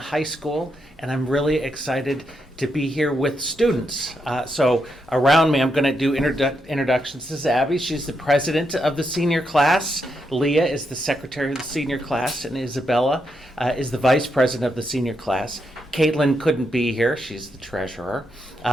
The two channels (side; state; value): both; normal; correlation 0.81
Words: school, and I'm really excited to be here with students. So around me, I'm going to do introductions. This is Abby. She's the president of the senior class. Leah is the secretary of the senior class, and Isabella is the vice president of the senior class. Caitlin couldn't be here. She's the treasurer.